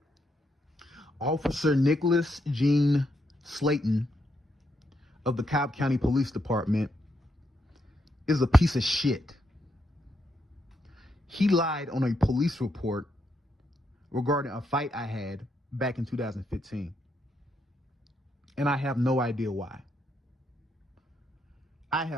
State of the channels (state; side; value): normal; both; correlation 0.79